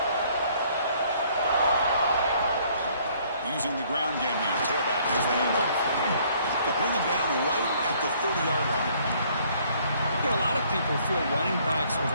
Using the ground game here. Tailback has the handoff. They'll bring him down right at the 30-yard line. You know, a lot of people feel running backs with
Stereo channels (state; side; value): inverted; both; correlation -0.62